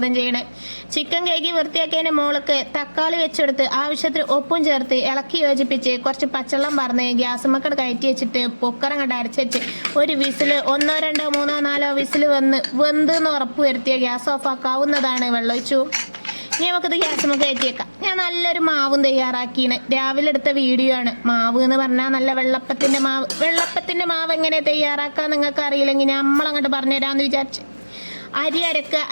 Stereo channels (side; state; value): both; inverted; correlation -1.00